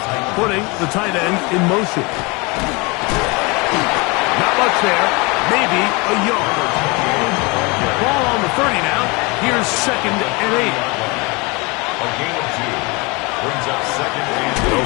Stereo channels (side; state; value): right; quieter; 27.4 dB